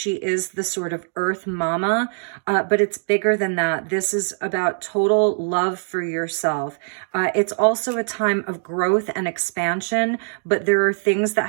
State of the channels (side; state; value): left; silent; digital silence